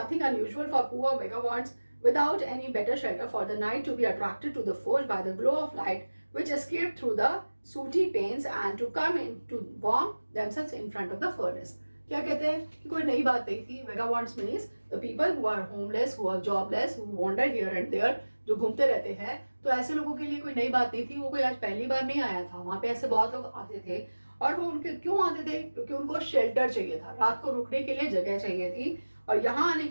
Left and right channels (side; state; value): both; inverted; correlation -1.00